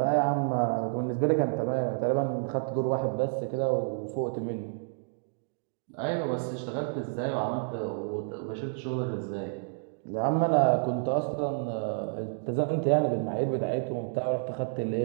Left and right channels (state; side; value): silent; left; digital silence